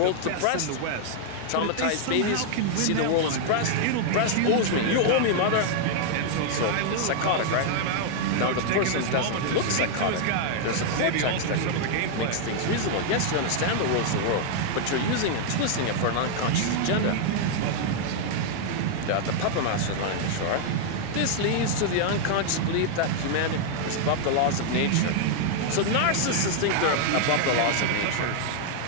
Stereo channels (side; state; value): both; different; correlation 0.00